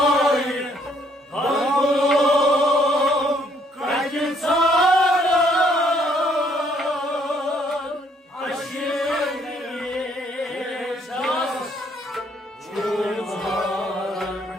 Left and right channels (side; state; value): both; normal; correlation 0.67